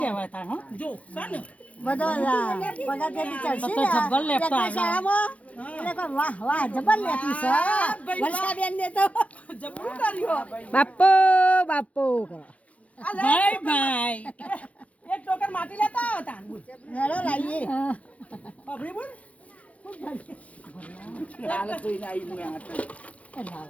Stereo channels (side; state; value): right; late; 0.066 ms